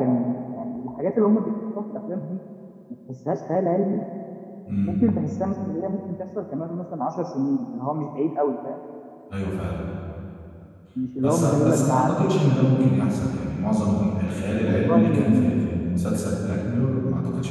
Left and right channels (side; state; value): both; identical; correlation 1.00